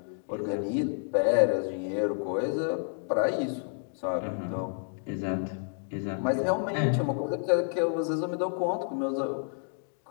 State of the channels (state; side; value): silent; right; 58 dB below the other